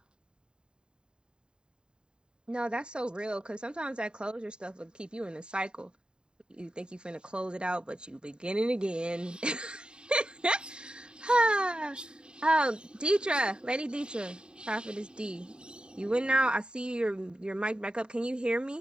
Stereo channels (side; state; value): left; late; 0.049 ms